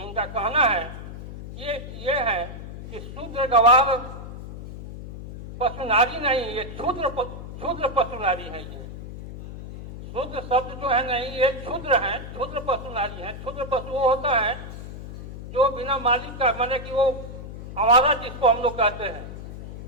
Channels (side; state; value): left; noise; hum, 11 dB below the sound